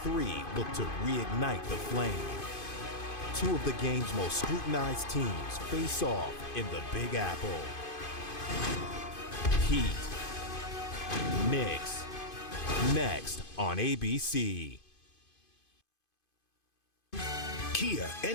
Three look to reignite the flame. Two of the game's most scrutinized teams face off in the Big Apple. Heat. Knicks. Next on ABC. Kia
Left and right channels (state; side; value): late; right; 2.5 ms